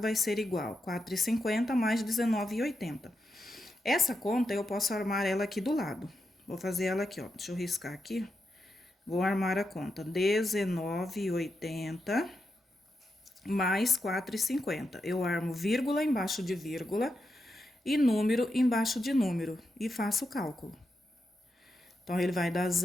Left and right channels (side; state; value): both; normal; correlation 0.86